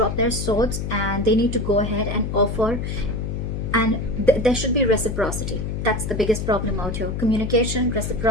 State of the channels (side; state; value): left; noise; hum, 3 dB below the sound